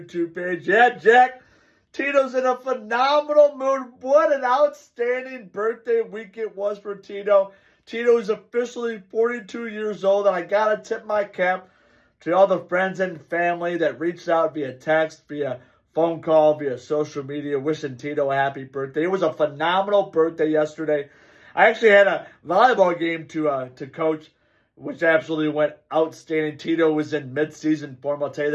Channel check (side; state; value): both; identical; correlation 1.00